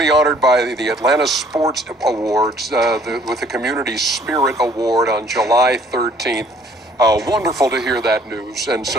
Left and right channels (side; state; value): both; normal; correlation 0.58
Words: honored by the Atlanta Sports Awards with the Community Spirit Award on July 13th. Wonderful to hear that news, and